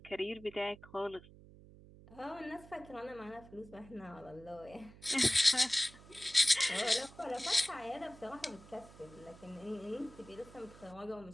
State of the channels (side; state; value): right; noise; hum, 20 dB below the sound